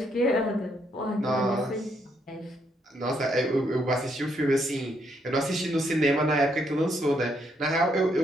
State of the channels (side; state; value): both; normal; correlation 0.74